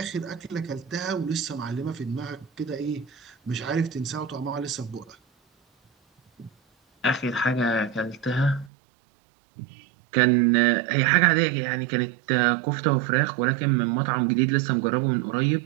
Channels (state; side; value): drops out; left; at 8.7 s